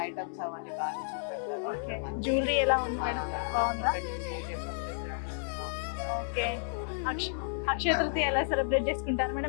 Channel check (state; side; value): silent; right; 57 dB below the other